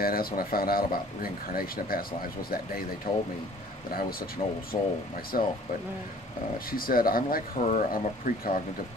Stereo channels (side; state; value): both; normal; correlation 0.52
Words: that's when I found out about reincarnation and past lives, was that day they told me that I was such an old soul myself. But she said, I'm like her, I'm a precognitive